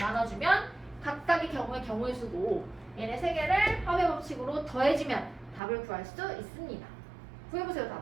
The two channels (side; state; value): left; drops out; at 5.6 s